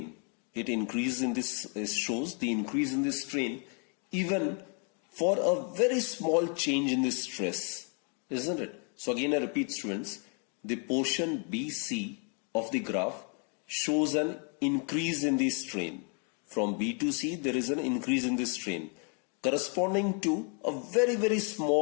It shows the increase in the strain even for a very small change in the stress, isn't it? So again I repeat, students, the portion BC of the graph shows an increase in the strain. From B to C there is an increase in the strain corresponding to a very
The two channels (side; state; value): right; quieter; 38.8 dB